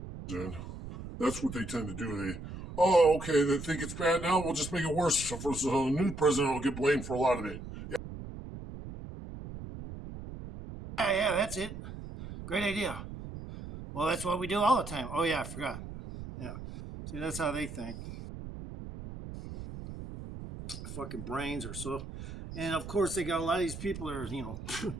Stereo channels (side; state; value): right; noise; rumble, 10 dB below the sound